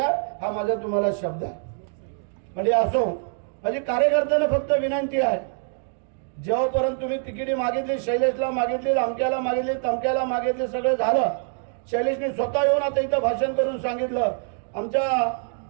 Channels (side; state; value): left; silent; 56 dB below the other